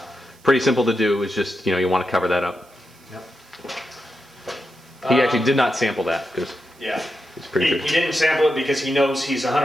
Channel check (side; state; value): right; noise; hiss, 29 dB below the sound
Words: pretty simple to do. It's just, you want to cover that up. Yep. He actually did not sample that because it's pretty sure. He didn't sample it because he knows he's